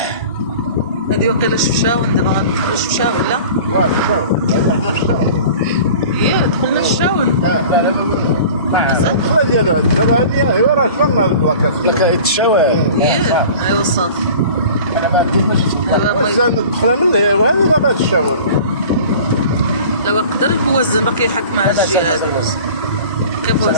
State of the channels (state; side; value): inverted; both; correlation -0.41